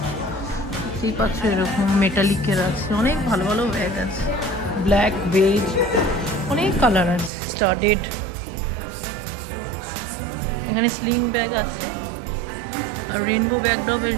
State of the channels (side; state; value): left; drops out; at 7.3 s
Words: দেখতেই পাচ্ছ। এরকম মেটালিকের আছে, অনেক ভালো ভালো ব্যাগ আছে, ব্ল্যাক, বেজ, অনেক কালার আছে, স্টাডেড। এখানে স্লিং ব্যাগ আছে, আর রেনবো ব্যাগটাও বেশ